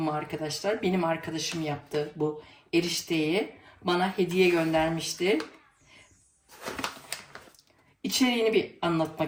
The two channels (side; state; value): both; identical; correlation 1.00